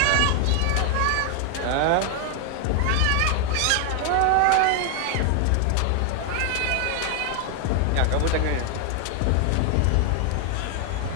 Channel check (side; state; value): both; different; correlation 0.00